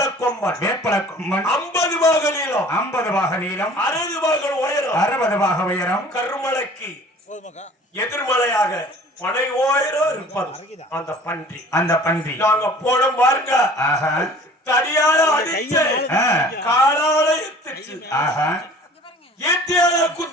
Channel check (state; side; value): normal; both; correlation 0.48